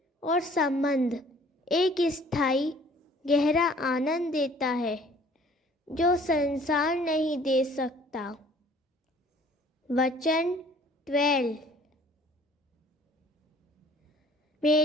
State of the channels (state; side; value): normal; both; correlation 0.54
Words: और संबंध एक स्थायी गहरा आनंद देता है जो संसार नहीं दे सकता। वचन 12।